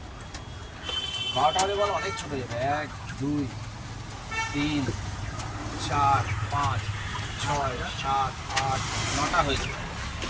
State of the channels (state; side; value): identical; both; correlation 1.00